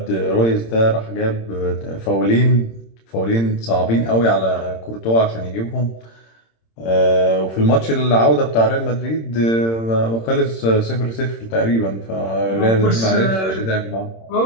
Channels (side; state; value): right; late; 26 ms